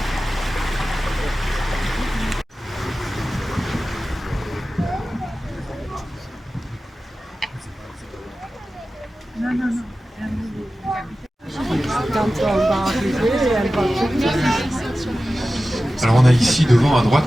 Alors on a ici devant à droite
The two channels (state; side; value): normal; both; correlation 0.95